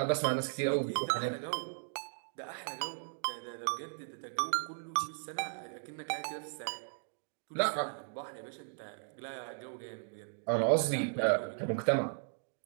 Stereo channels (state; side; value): silent; left; digital silence